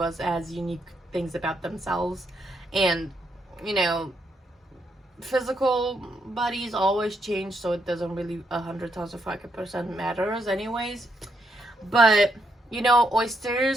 us has unique things about themselves, and physical bodies always change, so it doesn't really 100,000% matters, anyways. But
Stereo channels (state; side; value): normal; both; correlation 0.78